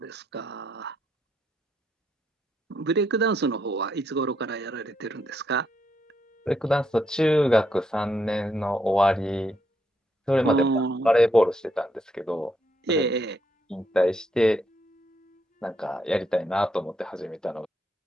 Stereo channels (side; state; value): both; normal; correlation 0.77